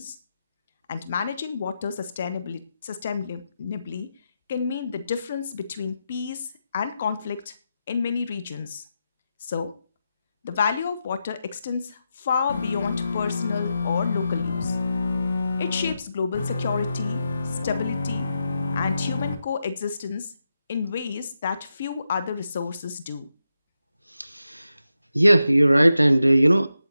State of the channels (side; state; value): both; inverted; correlation -0.88